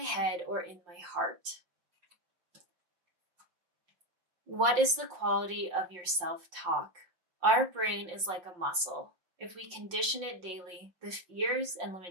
head or in my heart? What is the quality of your self-talk? Our brain is like a muscle. If we condition it daily, the fears and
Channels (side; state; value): left; late; 5.7 ms